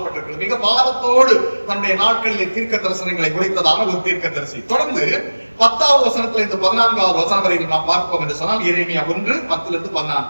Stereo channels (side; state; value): both; inverted; correlation -1.00